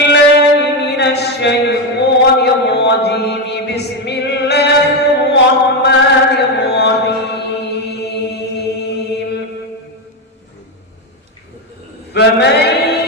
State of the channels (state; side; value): normal; both; correlation 0.09